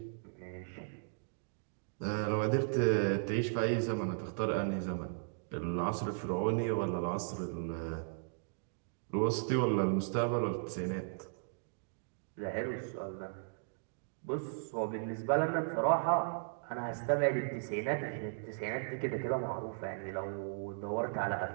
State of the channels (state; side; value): silent; left; digital silence